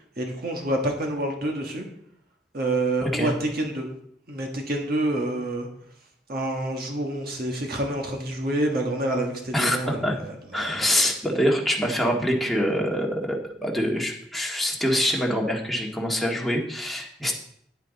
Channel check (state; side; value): normal; both; correlation 0.68